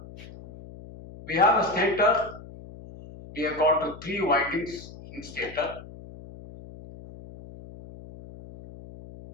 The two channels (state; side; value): noise; left; hum, 17 dB below the sound